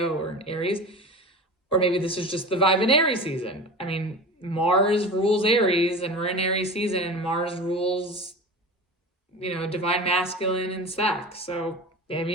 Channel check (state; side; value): normal; both; correlation 0.32